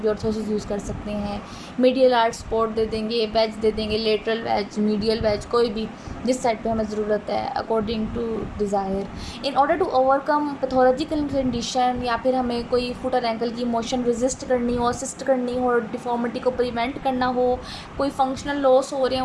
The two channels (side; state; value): both; identical; correlation 1.00